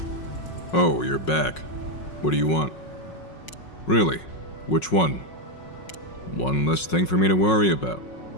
Oh, you're back. What do you want? Really? Which one? One less thing for me to worry about.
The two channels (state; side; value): late; right; 5.5 ms